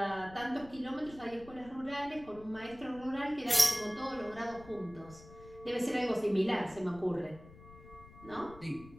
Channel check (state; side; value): noise; left; rumble, 19 dB below the sound